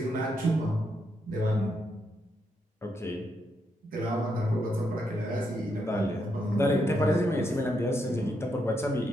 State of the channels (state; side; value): normal; both; correlation 0.80